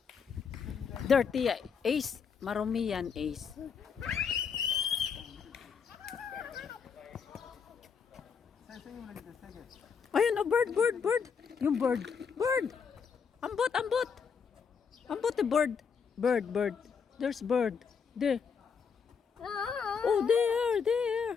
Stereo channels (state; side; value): quieter; right; 6.2 dB